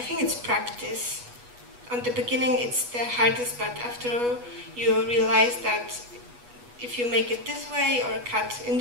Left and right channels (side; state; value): left; late; 8.2 ms